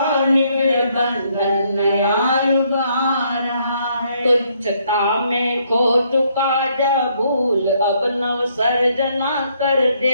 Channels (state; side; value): inverted; both; correlation -0.70